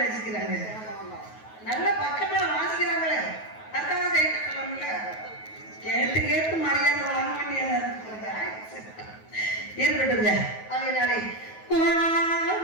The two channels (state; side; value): late; right; 9.3 ms